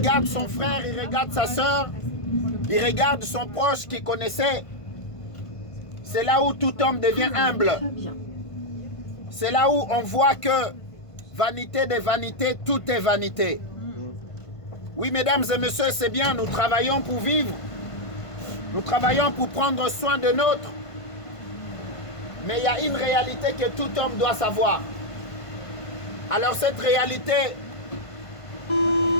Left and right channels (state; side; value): late; right; 1.5 ms